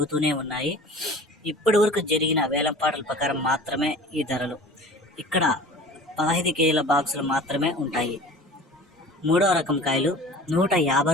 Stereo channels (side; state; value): both; normal; correlation 0.42